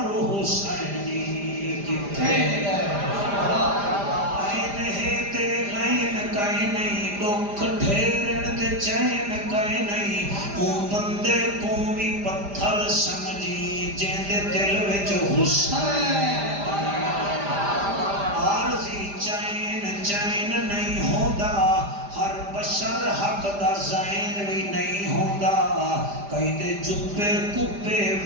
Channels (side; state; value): left; late; 5.0 ms